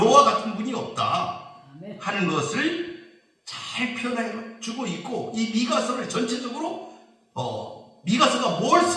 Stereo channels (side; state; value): both; identical; correlation 1.00